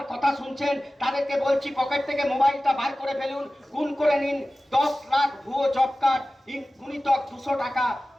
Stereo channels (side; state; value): both; normal; correlation 0.96